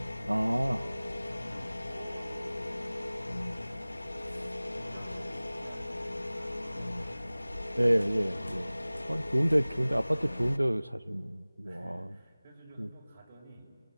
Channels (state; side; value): inverted; both; correlation -0.99